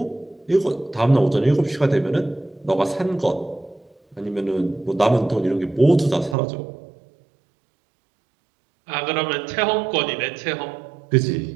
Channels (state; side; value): drops out; left; at 6.4 s